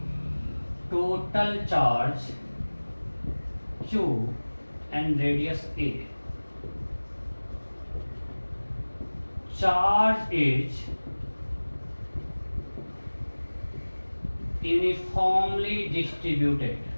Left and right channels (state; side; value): inverted; both; correlation -1.00